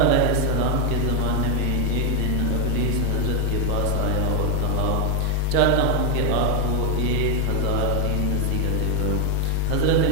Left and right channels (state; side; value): different; both; correlation 0.00